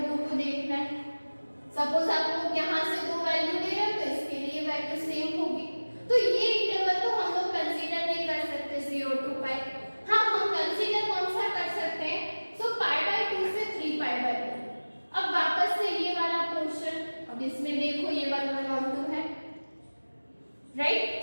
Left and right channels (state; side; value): inverted; both; correlation -1.00